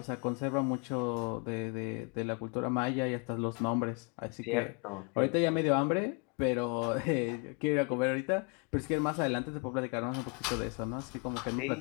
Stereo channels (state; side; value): quieter; right; 35.3 dB